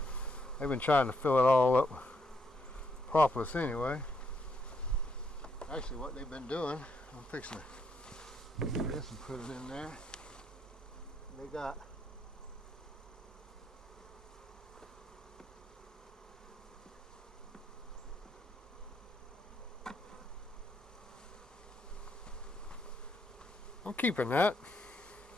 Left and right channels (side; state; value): both; normal; correlation 0.76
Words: been trying to fill it all up with propolis anyway. Actually, what they've been doing, I'm fixing to get this and put it in there. They got I'm keeping that.